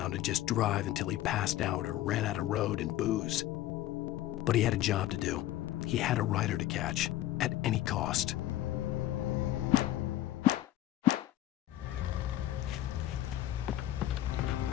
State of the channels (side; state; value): right; quieter; 14.1 dB